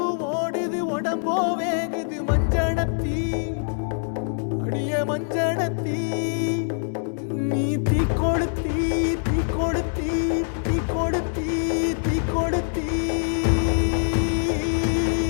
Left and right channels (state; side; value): silent; right; digital silence